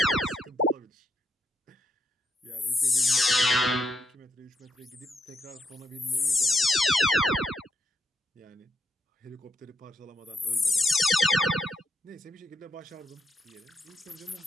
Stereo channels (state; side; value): normal; both; correlation 0.80